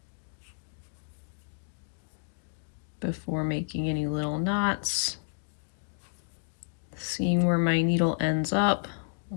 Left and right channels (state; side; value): silent; right; digital silence